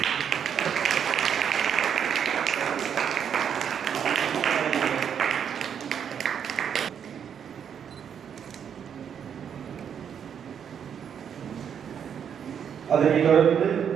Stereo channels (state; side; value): quieter; left; 8.1 dB